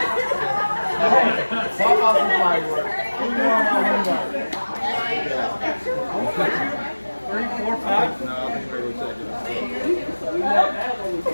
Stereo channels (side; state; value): both; inverted; correlation -1.00